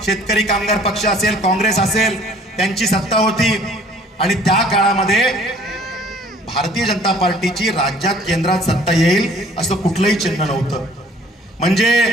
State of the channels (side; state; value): both; normal; correlation 0.54